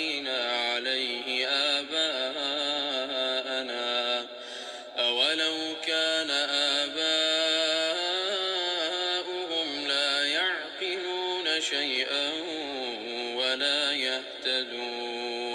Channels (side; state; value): both; identical; correlation 1.00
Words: عليه آباءنا أولو كان آباؤهم لا يعقلون شيئا ولا